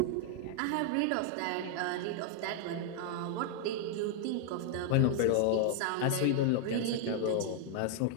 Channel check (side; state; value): both; different; correlation 0.00